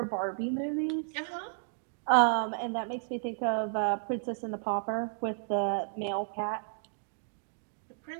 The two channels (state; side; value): silent; left; digital silence